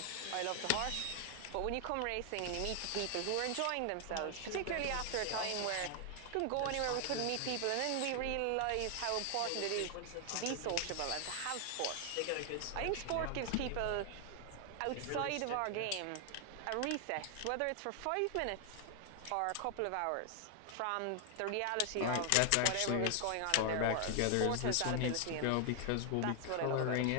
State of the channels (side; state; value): both; different; correlation 0.00